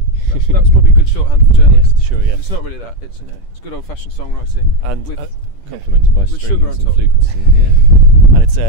that's probably good shorthand for journalists. Yeah, sure, yeah. But it's not really that, it's good old fashioned songwriting and with complemented by strings sugar on and top. flutes. And it's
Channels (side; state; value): right; late; 10 ms